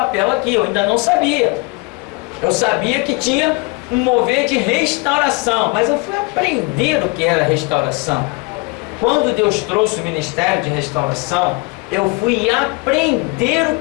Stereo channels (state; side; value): quieter; right; 27.5 dB